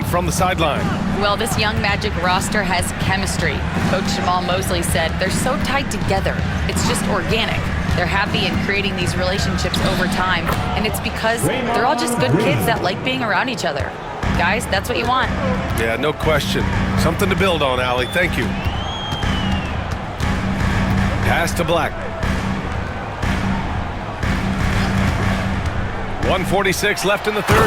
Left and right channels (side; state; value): both; identical; correlation 1.00